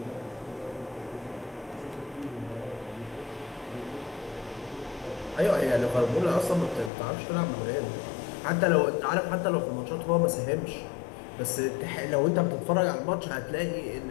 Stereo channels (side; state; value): right; drops out; at 6.9 s